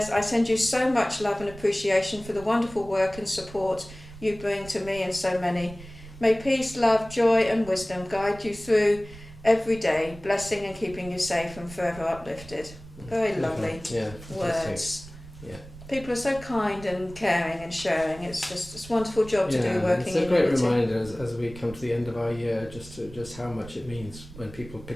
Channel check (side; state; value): right; noise; rumble, 17 dB below the sound